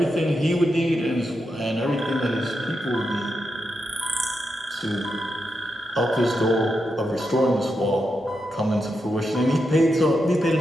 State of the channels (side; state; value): both; normal; correlation 0.86